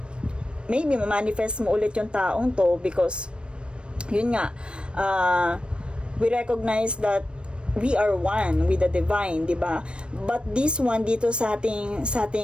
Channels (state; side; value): late; left; 0.057 ms